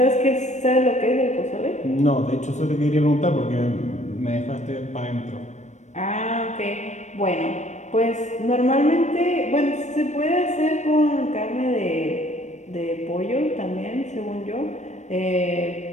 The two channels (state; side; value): late; right; 0.34 ms